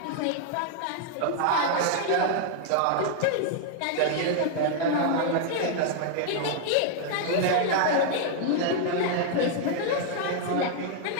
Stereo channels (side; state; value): both; different; correlation 0.00